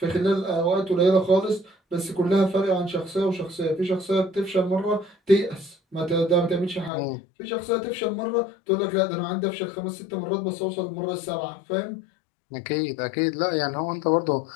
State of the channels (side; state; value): right; drops out; at 6.9 s